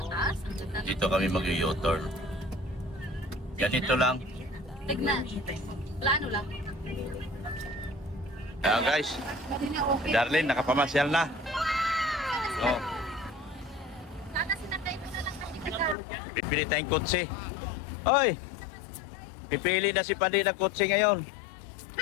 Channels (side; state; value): right; drops out; at 16.0 s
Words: Dito kami mag-u-turn. Ganito lang. Tignan. Plano lang. Ayan guys, Pwede na okay. Darlene, nakapamasyal na. Oh, Sana sinakay ko na lang kasi kahapon. bibili tayong kotse. Hoy, Hindi naman sinakay. pipili na si Pandi ng kotse ngayon.